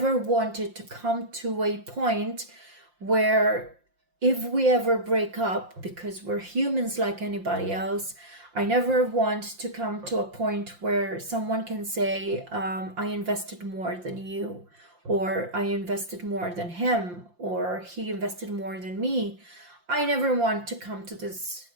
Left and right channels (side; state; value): left; late; 5.7 ms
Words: wanted to come to a point where if we ever break up, because we're humans like anybody else, I never want to come to a point where someone can say, I invested more than you, or I invested more than him, or he invested more than me. I never want to come to